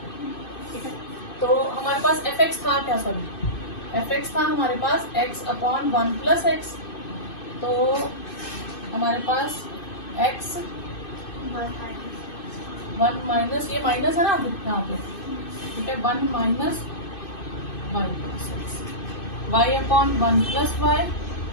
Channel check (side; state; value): right; late; 2.6 ms